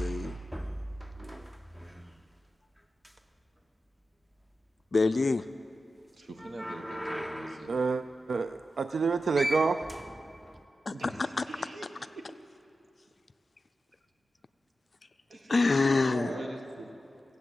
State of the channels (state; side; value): normal; both; correlation 0.91